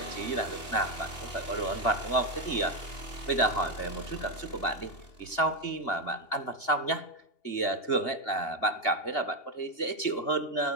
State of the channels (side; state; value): right; late; 2.8 ms